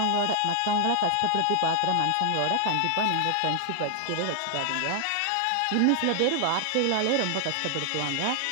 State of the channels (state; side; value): different; both; correlation 0.00